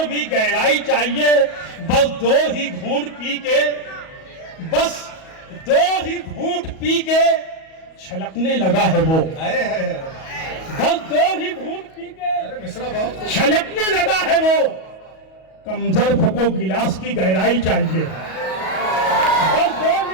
भी गहराई चाहिए. बस दो ही घूंट पी के, बस दो ही घूंट पी के छलकने लगा है वो. बस दो ही घूंट पी के छलकने लगा है वो. कमजोर को गिलास की गहराई चाहिए. बस दो ही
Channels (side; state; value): right; late; 37 ms